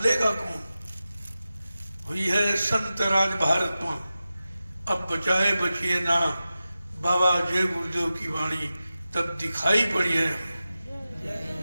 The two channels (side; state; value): both; inverted; correlation -0.94